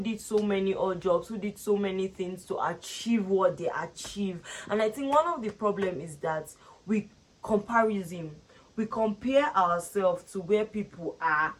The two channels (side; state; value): both; identical; correlation 1.00